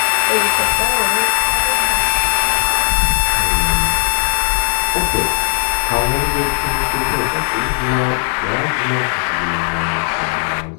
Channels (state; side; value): silent; right; digital silence